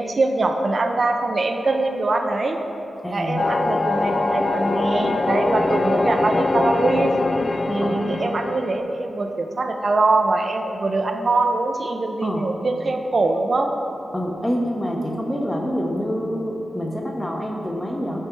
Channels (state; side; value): normal; both; correlation 0.91